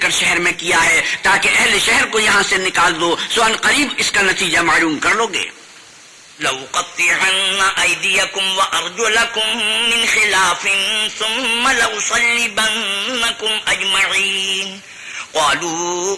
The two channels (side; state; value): both; identical; correlation 1.00